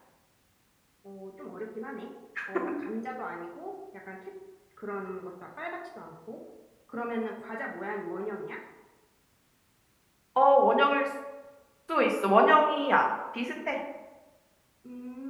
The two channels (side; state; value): both; identical; correlation 1.00